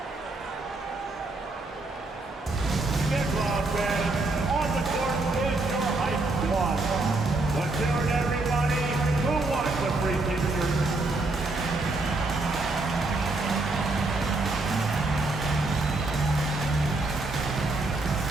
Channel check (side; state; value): left; quieter; 3.1 dB